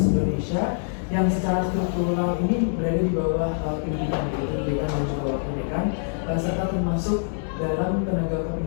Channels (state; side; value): silent; right; digital silence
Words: Indonesia yang secara struktural ini berada di bawah pendidikan, yaitu dekan dan juga wakil dekan, serta termasuk dalam tenaga